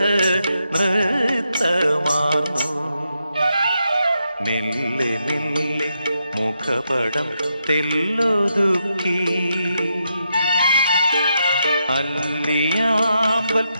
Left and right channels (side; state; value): both; inverted; correlation -0.83